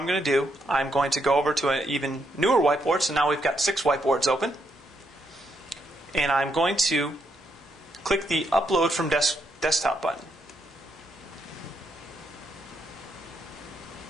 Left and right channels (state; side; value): normal; both; correlation 0.78